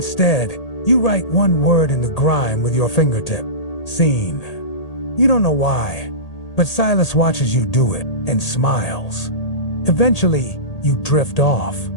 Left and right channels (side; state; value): right; late; 1.8 ms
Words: you write one word in the grime with your fingertip. Seen. You don't know why, but Silas watches you do it and smiles. Eventually, you drift off.